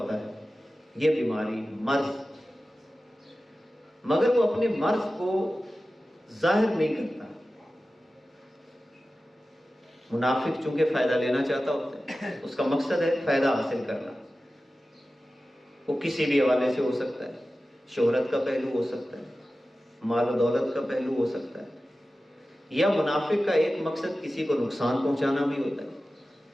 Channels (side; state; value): both; normal; correlation 0.95